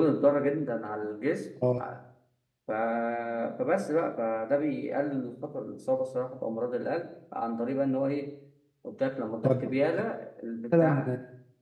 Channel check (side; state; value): both; identical; correlation 1.00